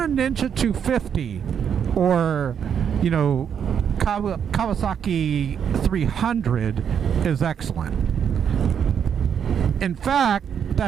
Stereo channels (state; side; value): quieter; left; 8.0 dB